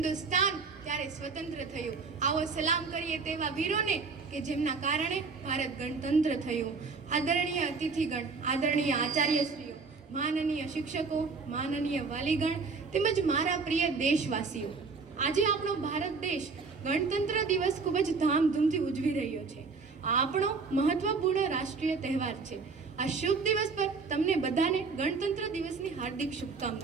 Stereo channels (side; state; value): left; quieter; 4.6 dB